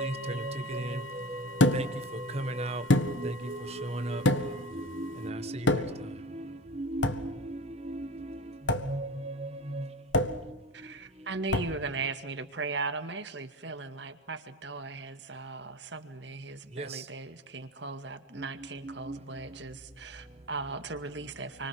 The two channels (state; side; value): normal; both; correlation 0.33